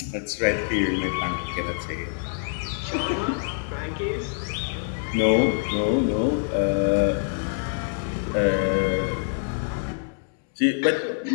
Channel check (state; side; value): silent; right; digital silence